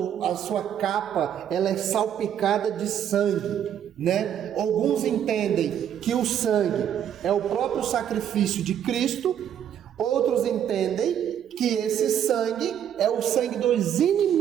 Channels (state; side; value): quieter; left; 9.6 dB